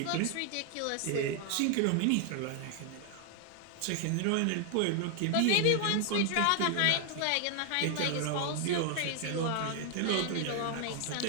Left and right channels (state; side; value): different; both; correlation 0.00